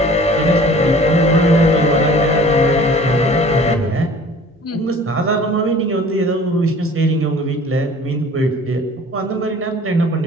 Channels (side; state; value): both; normal; correlation 0.48